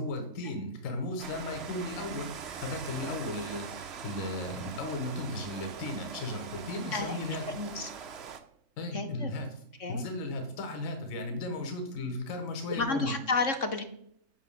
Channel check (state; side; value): late; right; 3.0 ms